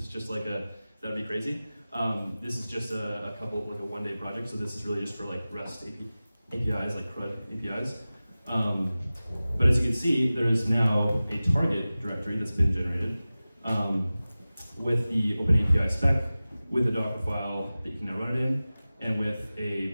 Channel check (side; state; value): both; inverted; correlation -0.97